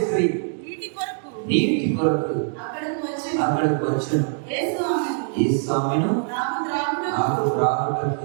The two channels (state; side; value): silent; left; digital silence